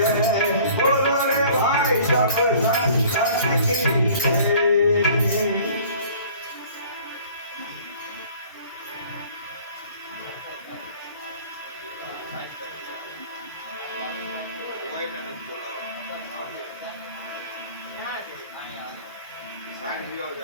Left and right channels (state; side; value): inverted; both; correlation -0.50